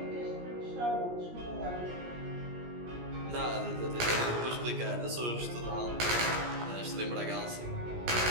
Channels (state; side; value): late; left; 17 ms